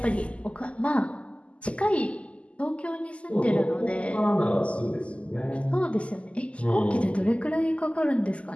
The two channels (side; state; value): right; late; 0.059 ms